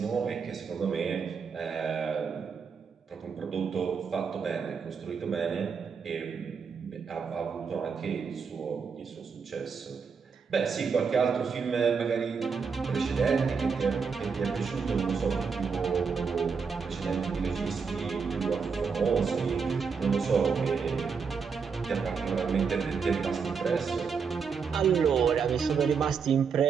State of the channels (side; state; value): left; quieter; 5.8 dB